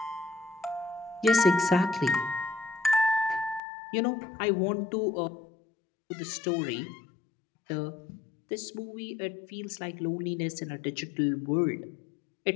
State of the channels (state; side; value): drops out; right; at 3.6 s